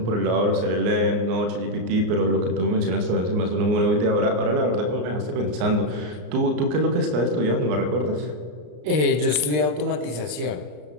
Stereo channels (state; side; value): late; left; 33 ms